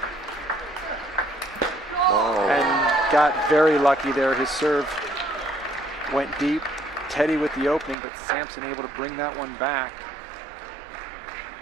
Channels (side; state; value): left; drops out; at 8.0 s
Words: Oh. And got very lucky there. His serve went deep. Teddy with the opening, but Samson able to bring that one back.